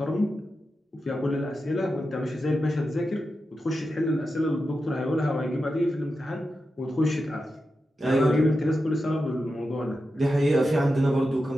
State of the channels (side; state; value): both; normal; correlation 0.90